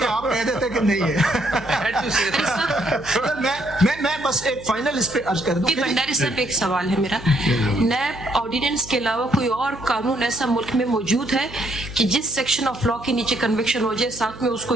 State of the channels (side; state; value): right; noise; hum, 17 dB below the sound